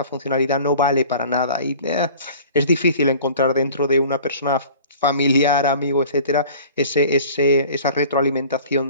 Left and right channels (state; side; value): inverted; both; correlation -0.45